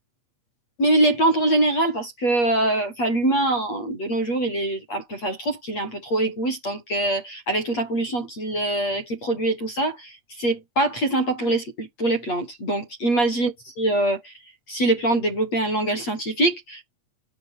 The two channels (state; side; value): late; right; 8.4 ms